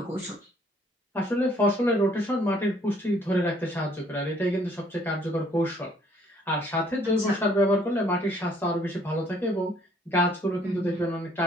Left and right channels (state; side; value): normal; both; correlation 0.62